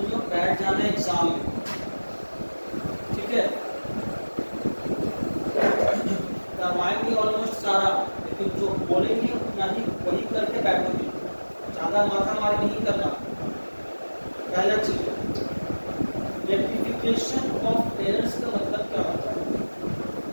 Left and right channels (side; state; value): both; inverted; correlation -1.00